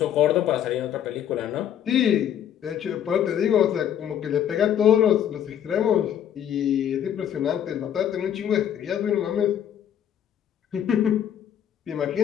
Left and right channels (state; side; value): quieter; right; 9.8 dB